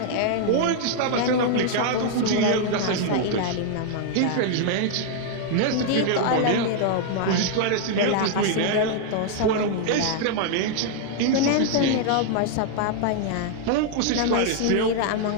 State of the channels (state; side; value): different; both; correlation 0.00